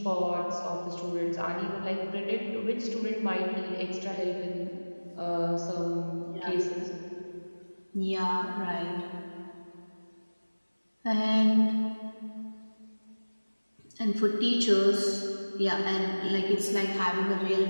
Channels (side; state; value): both; inverted; correlation -1.00